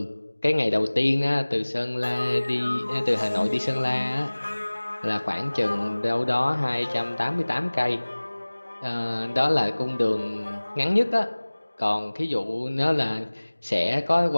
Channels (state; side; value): inverted; both; correlation -1.00